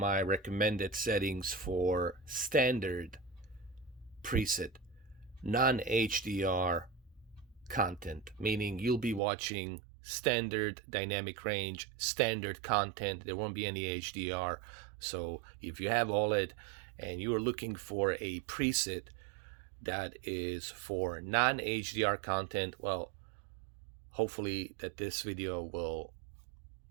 recommended settings for standard preset, non-HDR content, meaning you'll be watching standard dynamic range, standard content. There won't be any HDR. So if you have OLED and you are looking for a preset that is for non-HDR content, well, hopefully that this video will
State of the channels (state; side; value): drops out; left; at 9.2 s